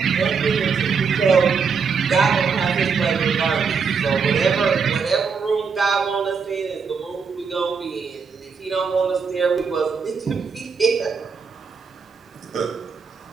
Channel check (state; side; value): quieter; left; 5.7 dB